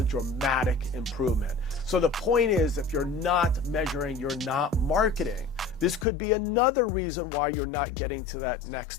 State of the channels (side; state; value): right; drops out; at 6.1 s